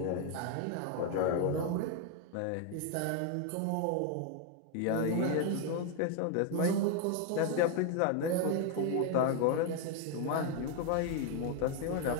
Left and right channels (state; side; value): different; both; correlation 0.01